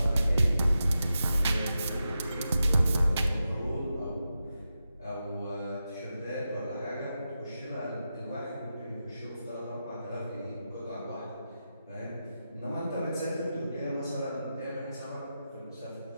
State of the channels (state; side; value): inverted; both; correlation -0.90